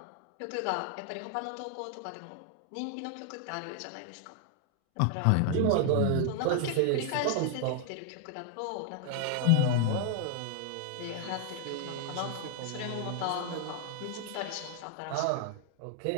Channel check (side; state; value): both; different; correlation 0.00